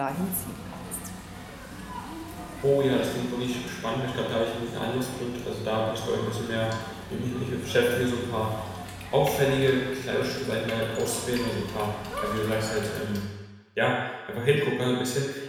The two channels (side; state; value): both; identical; correlation 1.00